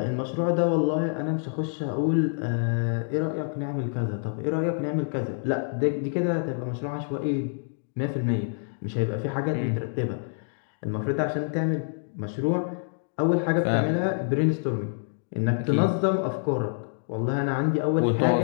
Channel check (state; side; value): silent; right; digital silence